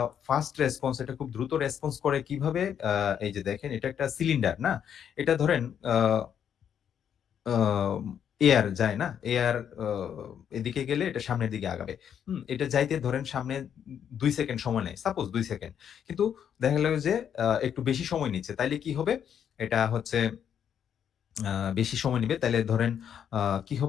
ফাস্ট রেসপন্স এটা খুব দ্রুত রেসপন্স করে কিভাবে? এই যে দেখেন এটা একটা সিলিন্ডার, না? এটা ধরেন আ আম এয়ার যায় না? এয়ার আ এদিকে গেলে এটা সামনের দিকে আগাবে। এটা যাইতে ধরেন সামনে ২ সেকেন্ড সময় নেয়। Suppose ২ second. কিন্তু দেখা গেল যে একটু বেশি সময় নিচ্ছে। তাইলে কি হবে? এটা হচ্ছে আ বেশি সময় নিবে। তাইলে ধরেন আ কি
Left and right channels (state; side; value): quieter; right; 8.7 dB